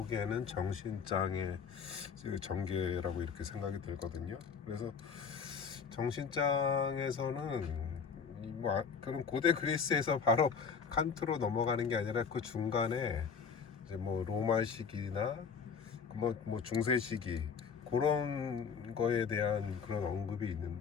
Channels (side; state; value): right; quieter; 6.2 dB